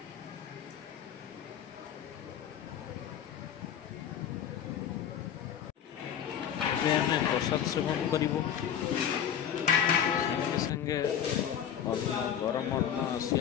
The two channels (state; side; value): quieter; right; 9.2 dB